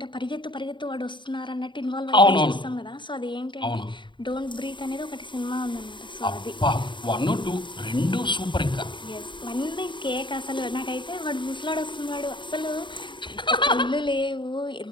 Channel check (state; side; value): late; right; 0.23 ms